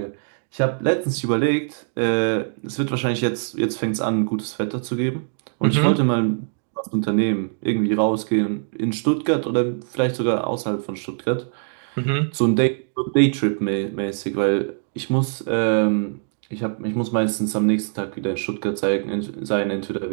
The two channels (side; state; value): left; silent; 64 dB below the other